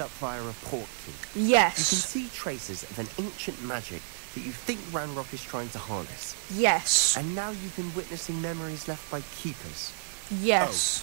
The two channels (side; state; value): left; silent; 58 dB below the other